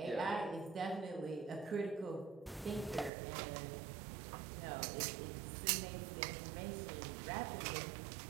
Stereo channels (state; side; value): drops out; left; at 3.1 s